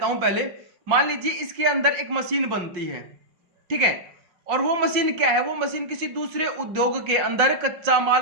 हूं। पहले मान लीजिए इसके अंदर एक मशीन बनती है, ठीक है, और वो मशीन क्या है, वो मशीन किसी दूसरे उद्योग के अंदर कच्चा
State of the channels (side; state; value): left; late; 5.6 ms